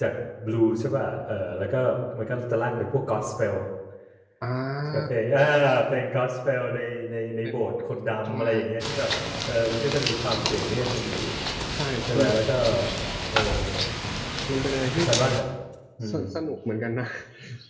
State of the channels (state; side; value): identical; both; correlation 1.00